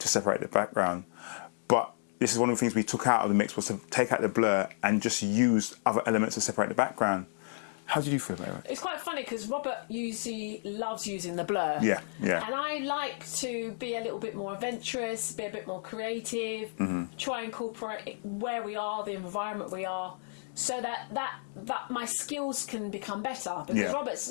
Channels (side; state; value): right; silent; digital silence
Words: separate the background. But this is one of the things we took out of the mix, was to take out the blur and just use other elements to separate the background. How did you feel about it? It's quite funny because Robert usually loves using the blur. Yeah, yeah. And I like to be a little bit more adventurous, be a bit more creative, try and incorporate where we are, the environment we are, so that my skills can become better. Because